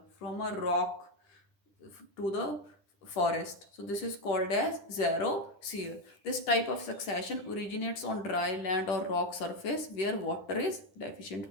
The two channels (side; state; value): right; late; 10 ms